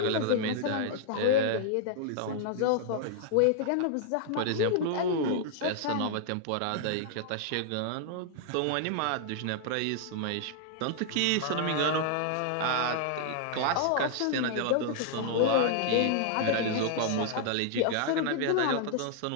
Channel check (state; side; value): different; both; correlation -0.01